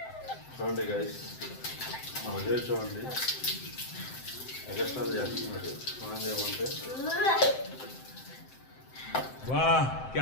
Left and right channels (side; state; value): right; late; 7.7 ms